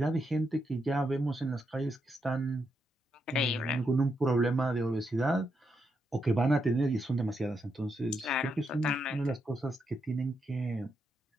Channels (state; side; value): normal; both; correlation 0.82